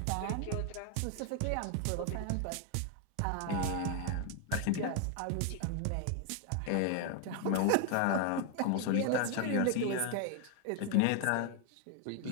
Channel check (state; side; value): different; both; correlation 0.01